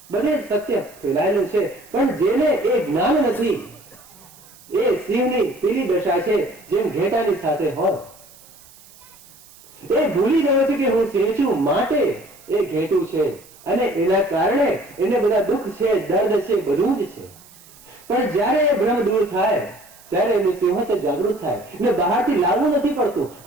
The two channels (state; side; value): noise; right; hiss, 24 dB below the sound